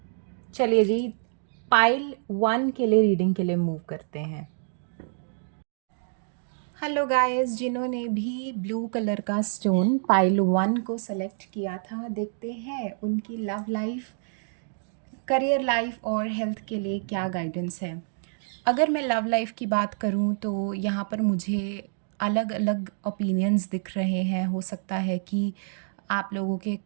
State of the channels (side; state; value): left; silent; digital silence